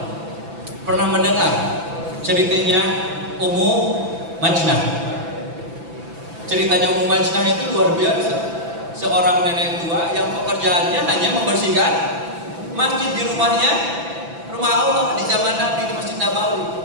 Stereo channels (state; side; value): late; left; 6.0 ms